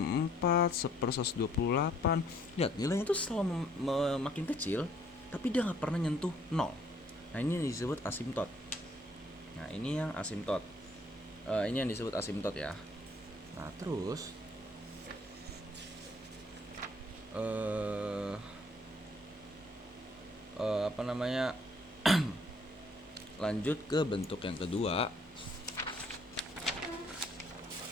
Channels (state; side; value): normal; both; correlation 0.63